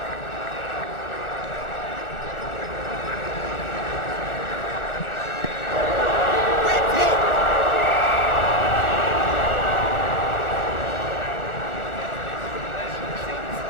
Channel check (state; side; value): late; right; 1.4 ms